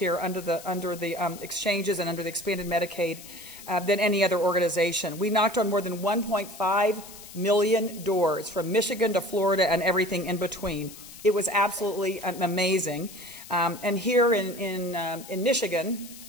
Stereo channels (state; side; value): noise; left; hiss, 16 dB below the sound